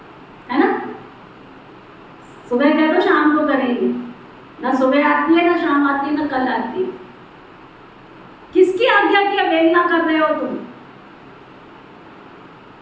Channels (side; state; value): both; identical; correlation 1.00